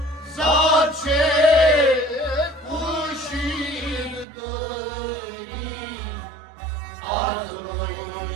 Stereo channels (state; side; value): drops out; left; at 4.2 s